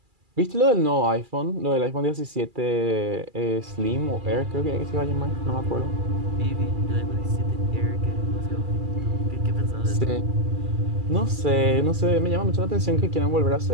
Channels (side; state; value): left; late; 2.4 ms